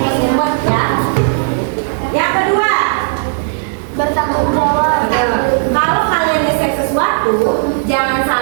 ya. Yang kedua, Bertanggung jawab. kalau kalian nge-share sesuatu, jangan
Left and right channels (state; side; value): silent; left; digital silence